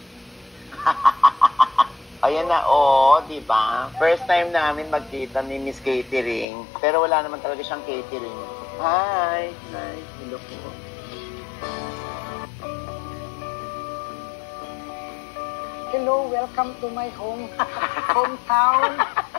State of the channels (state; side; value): drops out; right; at 6.5 s